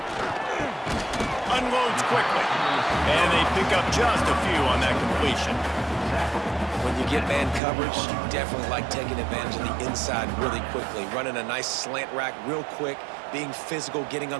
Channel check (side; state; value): left; drops out; at 7.6 s